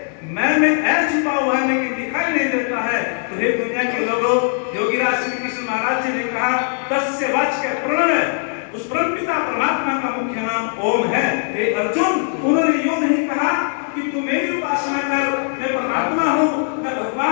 मैं में ऐ छुपा हुआ है लेकिन दिखाई नहीं देता है, तो हे दुनिया के लोगों, योगीराज श्री कृष्ण महाराज जी ने कहा तस्य वाच्य प्रणव, उस परमपिता परमात्मा का मुख्य नाम ओम है। हे अर्जुन, उन्होंने यूं नहीं कहा कि तू मेरी उपासना कर, मैं परमात्मा हूँ, मैं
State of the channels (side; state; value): right; silent; 56 dB below the other